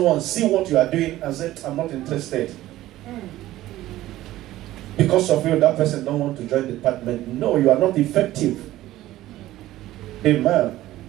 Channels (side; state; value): left; quieter; 15.3 dB